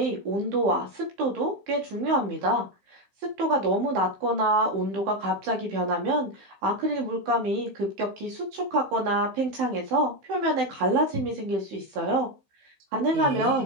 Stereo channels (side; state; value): left; late; 15 ms